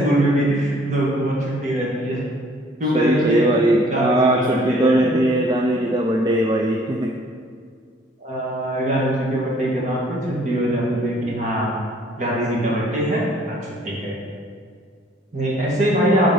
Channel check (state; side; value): normal; both; correlation 0.58